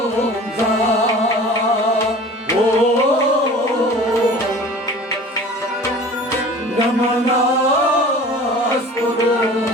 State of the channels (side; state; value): both; normal; correlation 0.42